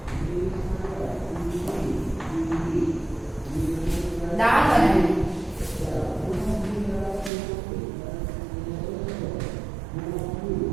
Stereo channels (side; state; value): left; drops out; at 7.3 s